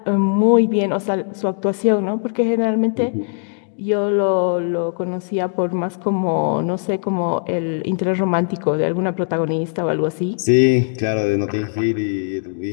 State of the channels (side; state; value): right; silent; digital silence